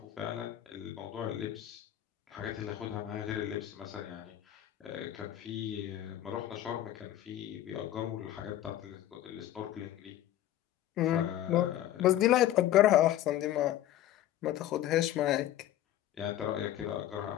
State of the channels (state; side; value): quieter; right; 12.7 dB